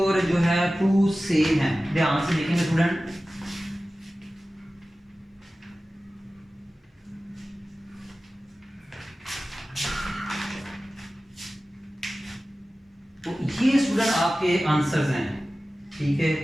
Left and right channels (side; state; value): both; normal; correlation 0.96